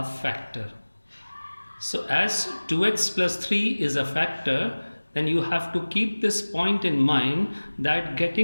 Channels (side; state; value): both; inverted; correlation -1.00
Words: factor. So as 2x plus 3 is a factor, then you have to keep this point in mind that